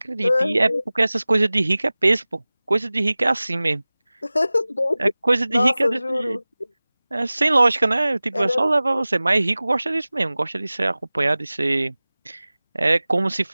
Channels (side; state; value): both; inverted; correlation -0.98